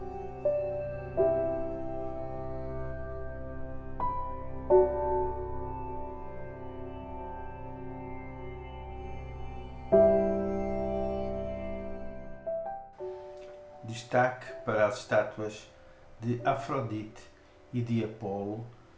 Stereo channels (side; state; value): both; identical; correlation 1.00